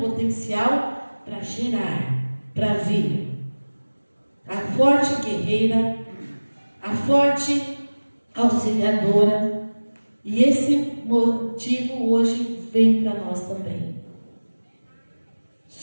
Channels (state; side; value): inverted; both; correlation -1.00